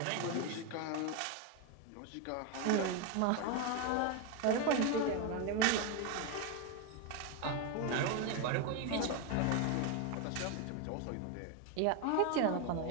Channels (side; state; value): both; different; correlation 0.02